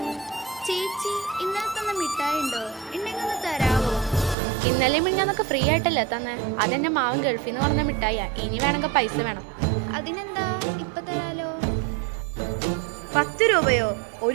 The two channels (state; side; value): drops out; left; at 4.4 s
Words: ചേച്ചി, ഇന്നലെ തന്ന മിഠായി ഉണ്ടോ? ഉണ്ടെങ്കിൽ ഒന്ന് തരാവോ? ഇന്നലെ മിഞ്ഞാന്നൊക്കെ ഫ്രീ ആയിട്ടല്ലേ തന്നെ? അതെന്നെ മാവൻ ഗൾഫിൽ നിന്ന് പറഞ്ഞ മിഠായിയാ. ഇനി വേണമെങ്കിൽ പൈസ വേണം. അതിനെന്താ, ഇപ്പൊ തരാലോ. 10 രൂപയോ?